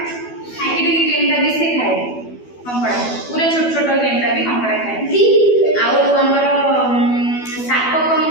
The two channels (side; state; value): right; late; 12 ms